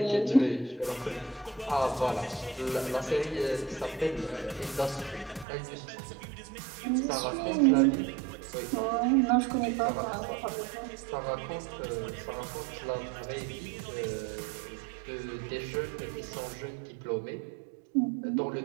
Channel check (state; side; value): drops out; left; at 5.5 s